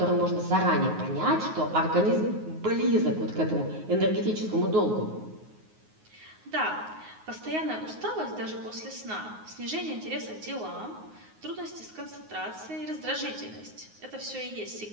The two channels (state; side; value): late; left; 9.5 ms